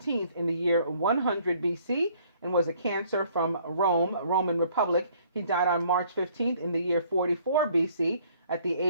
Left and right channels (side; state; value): both; inverted; correlation -0.60